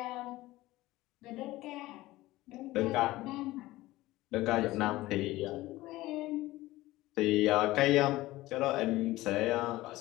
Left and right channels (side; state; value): right; quieter; 17.8 dB